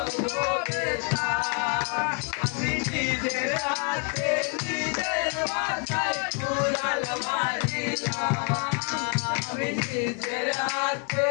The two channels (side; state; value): right; quieter; 38.3 dB